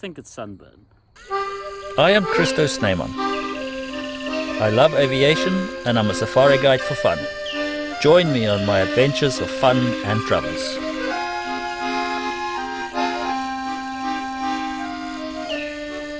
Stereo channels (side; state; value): both; identical; correlation 1.00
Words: it's sunburn. I am Christo Snyman. I love aviation and I'm a safari guide for fun. Join me on my adventures of fun and travels.